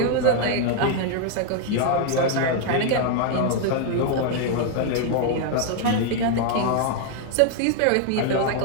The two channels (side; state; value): both; different; correlation 0.00